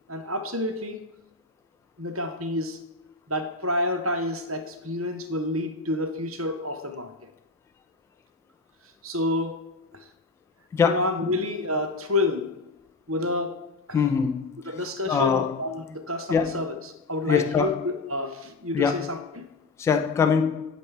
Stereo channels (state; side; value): quieter; right; 3.7 dB